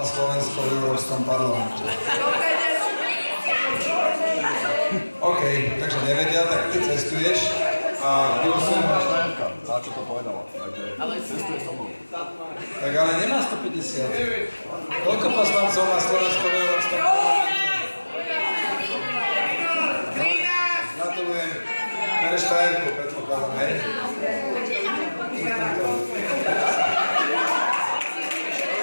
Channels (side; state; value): both; inverted; correlation -1.00